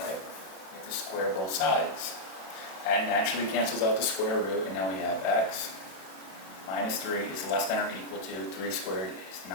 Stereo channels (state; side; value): late; right; 32 ms